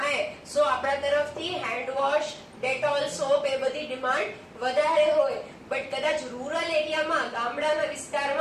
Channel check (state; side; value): identical; both; correlation 1.00